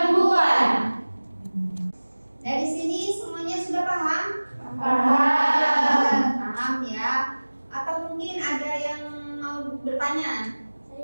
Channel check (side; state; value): both; inverted; correlation -1.00